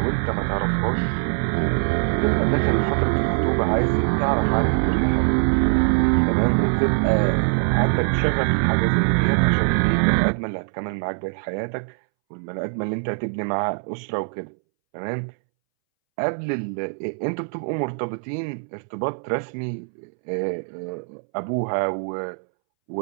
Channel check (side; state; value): left; silent; 64 dB below the other